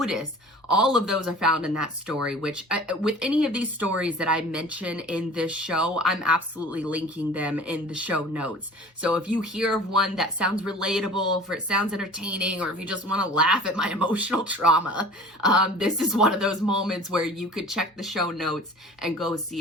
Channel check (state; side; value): normal; both; correlation 0.44